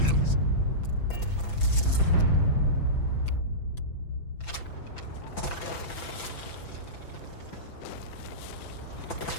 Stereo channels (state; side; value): late; right; 5.9 ms